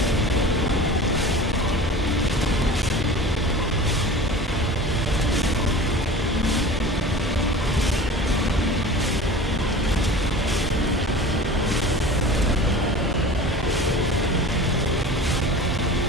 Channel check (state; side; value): normal; both; correlation 0.38